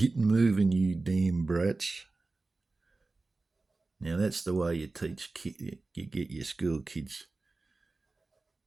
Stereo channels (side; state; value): left; quieter; 3.5 dB